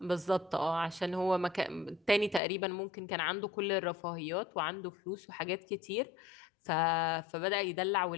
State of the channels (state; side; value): drops out; right; at 2.4 s